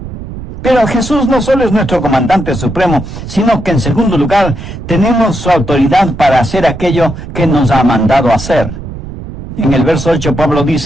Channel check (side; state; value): right; noise; rumble, 10 dB below the sound